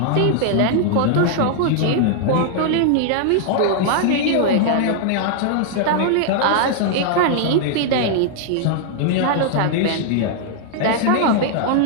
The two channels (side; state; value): both; different; correlation 0.00